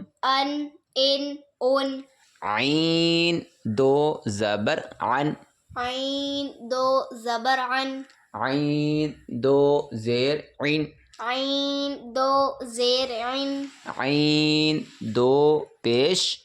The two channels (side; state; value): both; identical; correlation 1.00